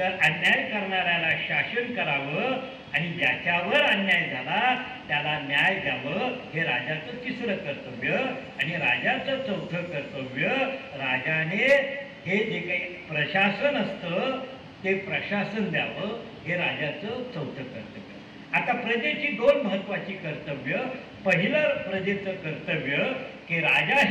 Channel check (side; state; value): both; identical; correlation 1.00